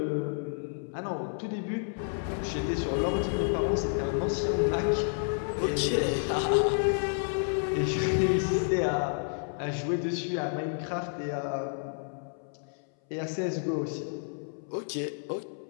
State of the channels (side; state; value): right; silent; 58 dB below the other